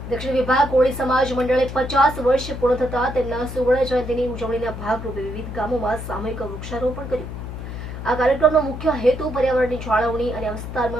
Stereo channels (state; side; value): noise; left; hum, 8 dB below the sound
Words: દક્ષિણ વિભાગ કોળી સમાજ મંડળે 50 વર્ષ પૂર્ણ થતા તેમના સુવર્ણ જયંતિની ઉજવણીના ભાગરૂપે વિવિધ ગામોમાં સામૂહિક વૃક્ષારોપણ કર્યું। આ કાર્યક્રમનો મુખ્ય હેતુ પર્યાવરણની જાળવણી અને